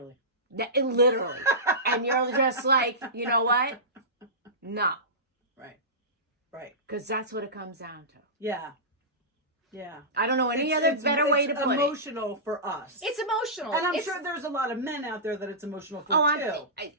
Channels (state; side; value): normal; both; correlation -0.19